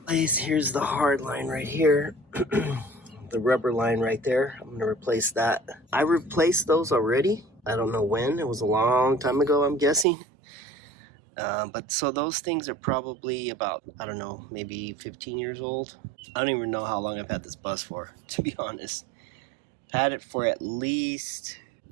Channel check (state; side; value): drops out; left; at 10.1 s